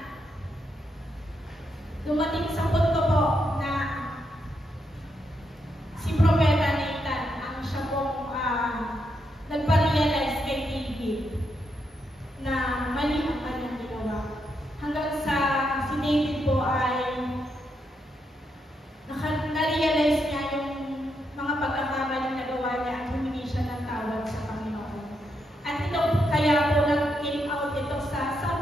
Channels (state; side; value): normal; both; correlation 0.81